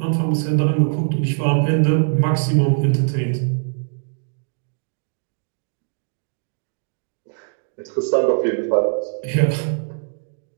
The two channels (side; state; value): left; silent; 64 dB below the other